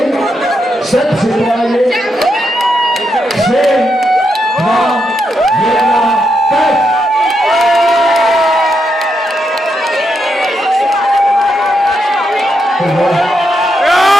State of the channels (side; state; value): both; normal; correlation 0.82